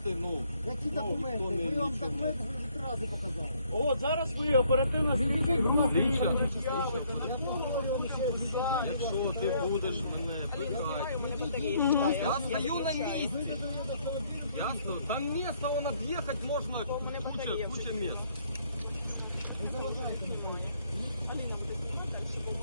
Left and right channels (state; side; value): inverted; both; correlation -0.66